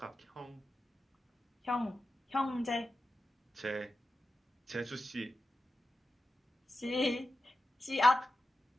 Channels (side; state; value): both; normal; correlation 0.91